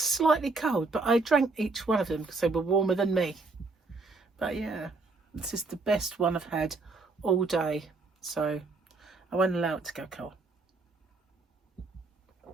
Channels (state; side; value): quieter; left; 3.7 dB